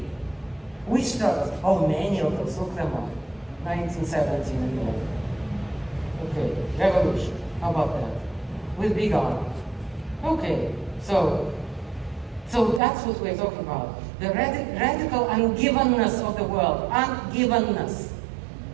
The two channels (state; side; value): drops out; left; at 12.8 s